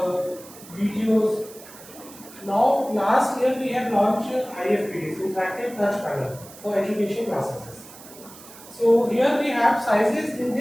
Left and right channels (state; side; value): noise; right; hiss, 19 dB below the sound